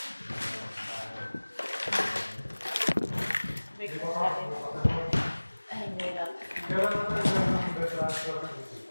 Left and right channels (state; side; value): inverted; both; correlation -1.00